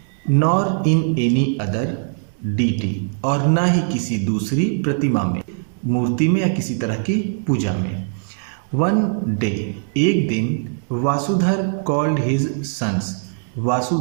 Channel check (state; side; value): silent; left; digital silence